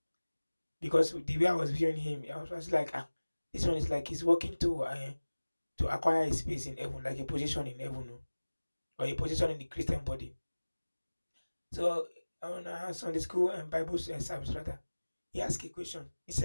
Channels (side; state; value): both; inverted; correlation -1.00